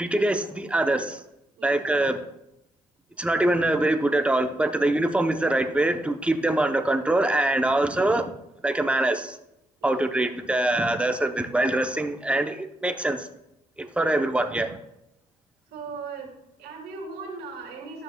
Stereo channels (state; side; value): normal; both; correlation 0.83